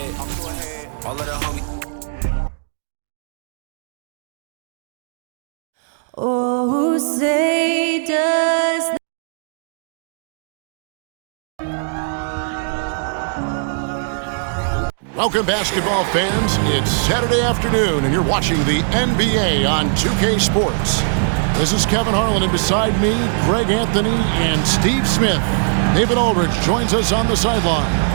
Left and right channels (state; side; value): silent; left; digital silence